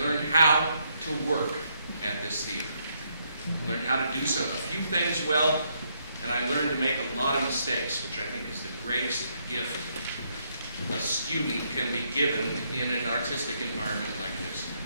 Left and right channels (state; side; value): inverted; both; correlation -0.75